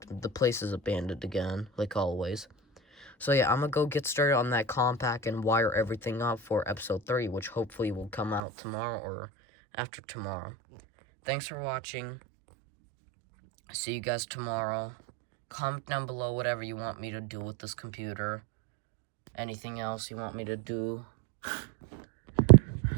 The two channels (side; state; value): left; drops out; at 8.4 s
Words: the place is abandoned again, like always. So yeah, I'm gonna go get started on that compact and wire everything up for episode 3, which hopefully will come out tomorrow or after tomorrow. Thanks for watching. See you guys tomorrow. Comment down below whatever you want me to do with this computer. Anything else you want me to do.